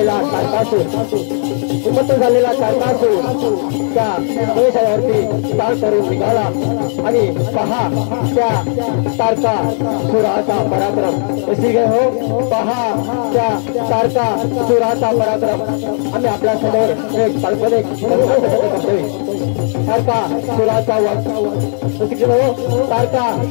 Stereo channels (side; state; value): right; silent; digital silence